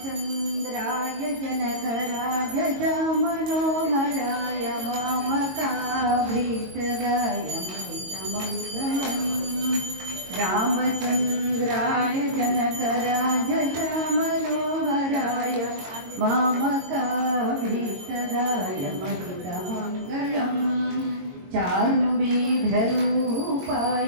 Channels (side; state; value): left; late; 22 ms